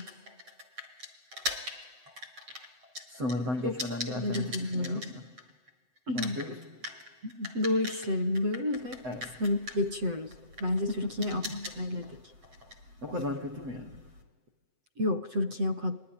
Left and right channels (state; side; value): late; left; 7.9 ms